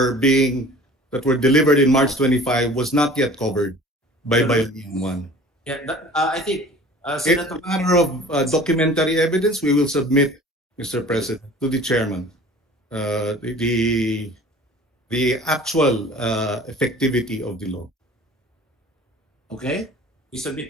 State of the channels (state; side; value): normal; both; correlation 0.45